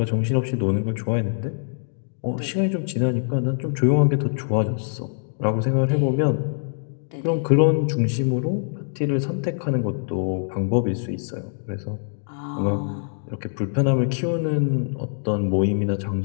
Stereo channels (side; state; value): right; silent; digital silence